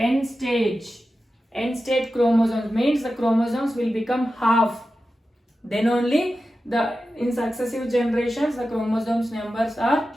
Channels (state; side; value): normal; both; correlation 0.92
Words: end state chromosomes, means the chromosomes will become half. Then only in successive generations the chromosomes numbers are